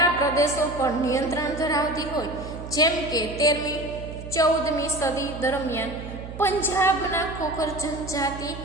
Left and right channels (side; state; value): right; noise; hum, 11 dB below the sound